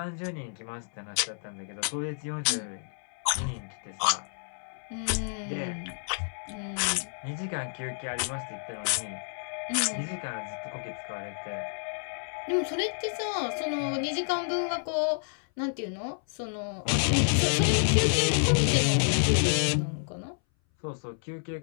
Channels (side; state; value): right; silent; 58 dB below the other